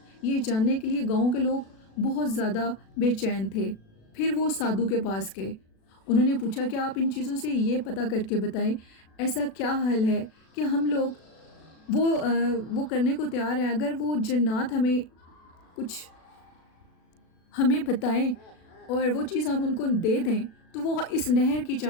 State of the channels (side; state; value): right; late; 36 ms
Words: یہ جاننے کے لیے گاؤں کے لوگ بہت زیادہ بے چین تھے۔ پھر وہ سادھو کے پاس گئے، انہوں نے پوچھا کہ آپ ان چیزوں سے یہ پتہ کر کے بتائیں ایسا کیا حل ہے کہ ہم لوگ وہ کرنے کو تیار ہیں، اگر وہ جنات ہمیں بتائیں اور وہ چیز ہم ان کو دے دیں تو وہ اس نہر کی